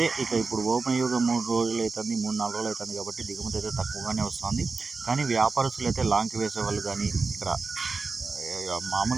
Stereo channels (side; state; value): left; quieter; 4.3 dB